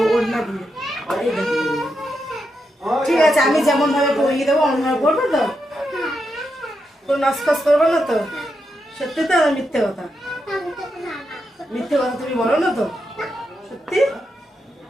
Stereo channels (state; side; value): normal; both; correlation 0.84